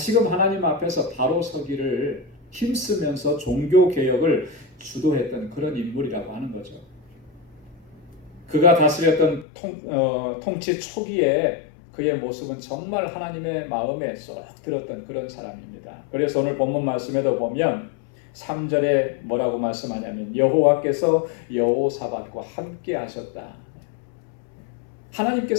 하나님 앞에서 바로 서기를 힘쓰면서 종교 개혁을 주도했던 그런 인물이라고 하는 거죠. 그가 다스렸던 통치 초기에 그의 모습은 정말 하나님의 마음에 쏙 들었던 그런 사람입니다. 그래서 오늘 본문 말씀에도 보면 3절에 뭐라고 말씀하냐면 여호와께서 여호사밧과 함께 하셨다.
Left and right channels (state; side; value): drops out; right; at 9.5 s